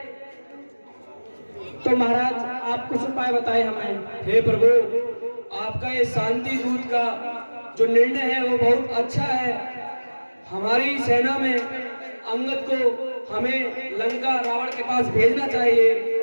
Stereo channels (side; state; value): both; inverted; correlation -1.00